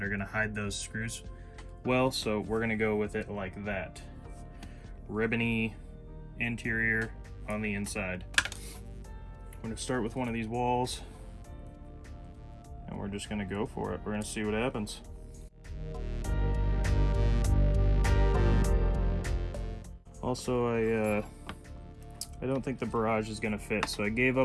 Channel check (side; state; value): both; identical; correlation 1.00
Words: are gonna hide those screws well, so we're gonna go with it like that. ribbony interior on the inside. I'm going to start with one of these walls, and we're just going to go for it. We're going to see what happens. Also, I don't think the barrage is going to fit, so I gave